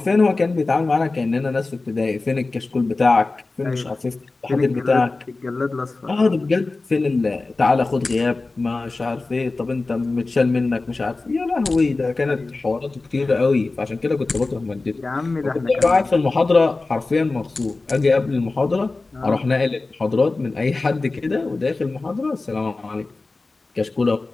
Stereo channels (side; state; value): right; quieter; 3.5 dB